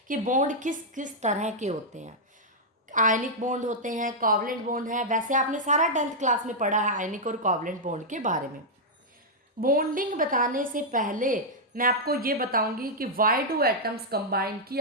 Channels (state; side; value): normal; both; correlation -0.05